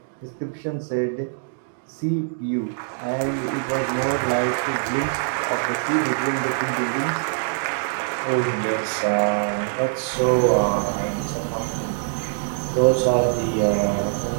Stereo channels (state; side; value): silent; left; digital silence